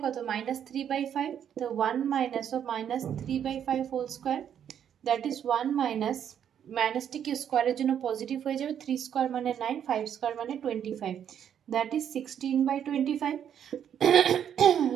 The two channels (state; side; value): quieter; left; 9.1 dB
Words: কত, -3/5, তো 1 minus of -3/5 whole square, that is 1 minus, মাইনাসটি কি স্কোয়ারের জন্য পজিটিভ হয়ে যাবে, 3 স্কোয়ার মানে 9, 5 স্কোয়ার মানে 25, that is 16/25.